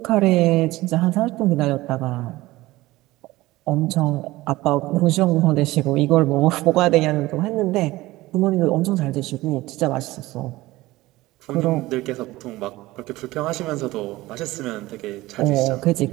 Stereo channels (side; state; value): left; quieter; 18.5 dB